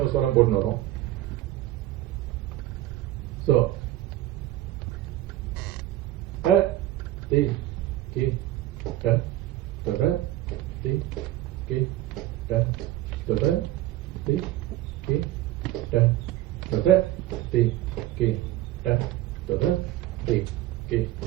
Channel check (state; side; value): quieter; left; 15.0 dB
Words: ஸ்வரம் போட்டு வரோம். ஸோ தி கி ட த தி கி ட த தி கி ட த தி கி ட த தி ki